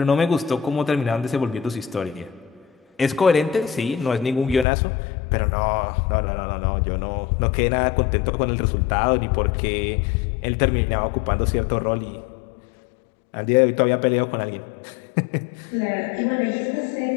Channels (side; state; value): right; drops out; at 4.7 s